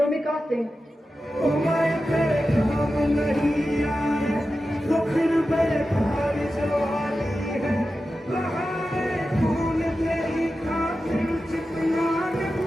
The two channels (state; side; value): normal; both; correlation 0.92